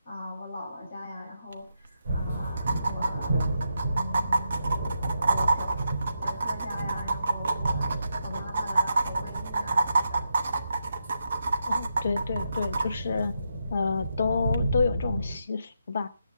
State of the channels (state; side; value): inverted; both; correlation -0.83